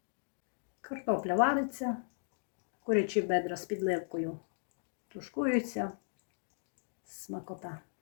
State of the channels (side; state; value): right; silent; digital silence